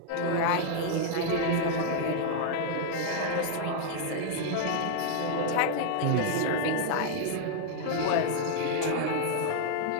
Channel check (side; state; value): both; different; correlation 0.00